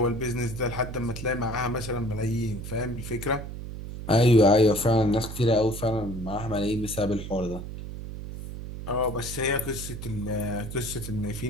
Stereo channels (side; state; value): right; noise; hum, 9 dB below the sound